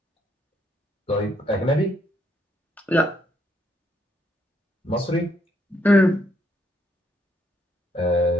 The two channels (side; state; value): both; normal; correlation 0.72